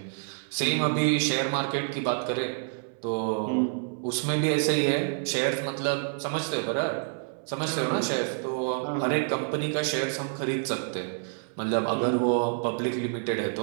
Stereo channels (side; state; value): left; silent; 59 dB below the other